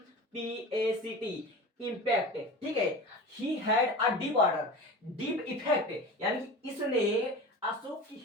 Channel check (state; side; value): normal; both; correlation 0.33